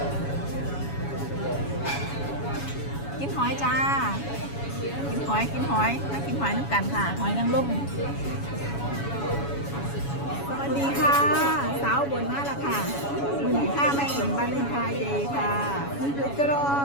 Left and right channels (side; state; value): right; late; 7.1 ms